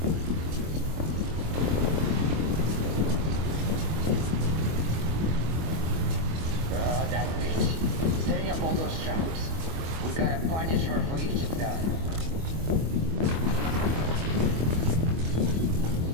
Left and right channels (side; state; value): left; late; 25 ms